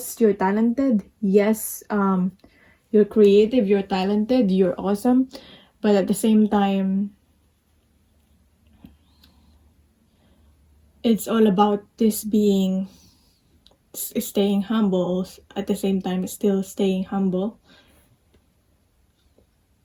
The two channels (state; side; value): identical; both; correlation 1.00